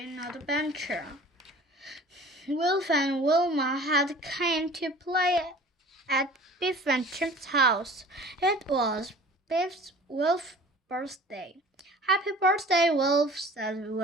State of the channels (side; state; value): both; normal; correlation 0.45